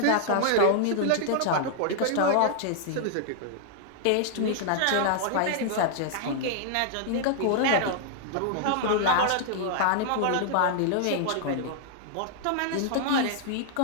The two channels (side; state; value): both; different; correlation -0.01